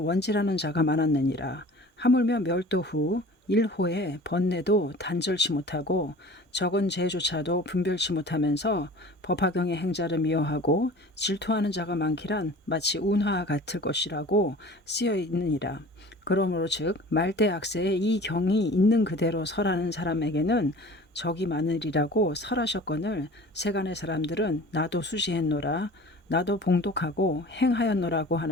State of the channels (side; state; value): both; normal; correlation 0.43